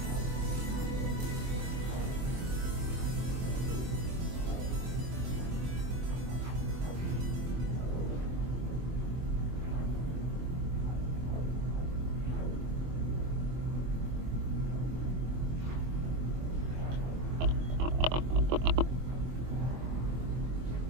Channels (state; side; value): late; left; 24 ms